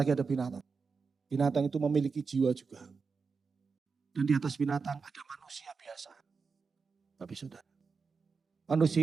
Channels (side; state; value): left; quieter; 5.0 dB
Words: ada binatang. Binatang itu memiliki jiwa juga. Dan di atas binatang ada manusia biasa. Bapak Saudara.